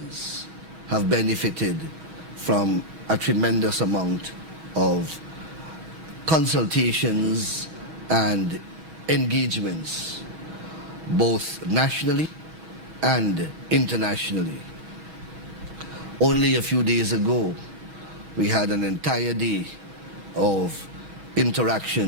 have benefited from a tremendous amount of consultations and engagements, both nationally and internationally. Only a few days ago, we had an entire day of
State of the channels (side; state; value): left; late; 6.2 ms